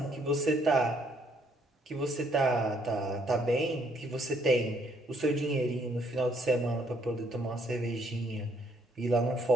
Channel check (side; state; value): both; normal; correlation 0.68